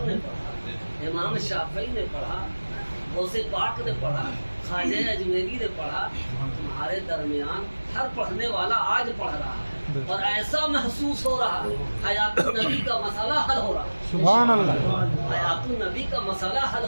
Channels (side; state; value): both; inverted; correlation -1.00